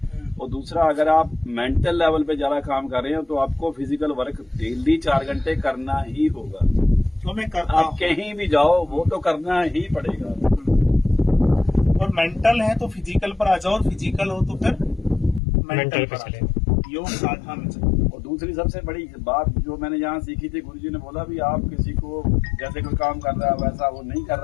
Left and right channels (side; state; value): right; drops out; at 15.4 s